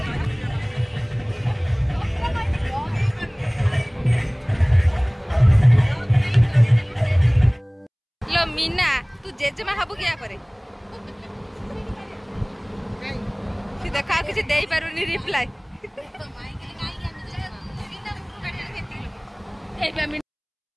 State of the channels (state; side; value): identical; both; correlation 1.00